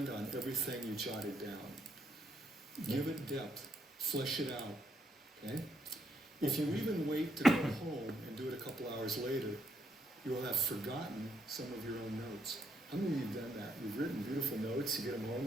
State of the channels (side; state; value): both; normal; correlation 0.76